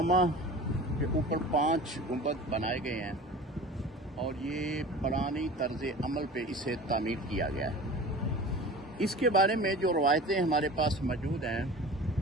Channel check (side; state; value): both; normal; correlation 0.38